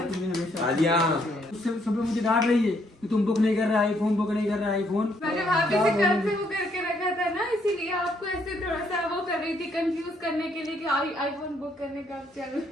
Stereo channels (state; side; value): normal; both; correlation 0.70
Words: रही है? आलिया उससे सब लोग मुझे डांट रही है कि तुम बुक नहीं कर रहा आईफोन, बुक नहीं कर रहा आईफोन। मैंने भाभी से कल से वो करके रखा था ना, इसीलिए आपको ऐसे थोड़ा सा वो कर रही थी, कंफ्यूज करने के लिए कि आईफोन बुक करने का अब चल